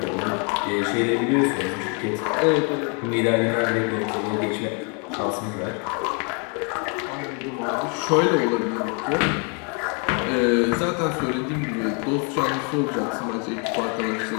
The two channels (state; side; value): quieter; right; 36.5 dB